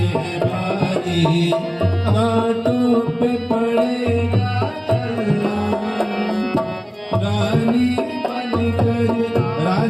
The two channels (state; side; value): identical; both; correlation 1.00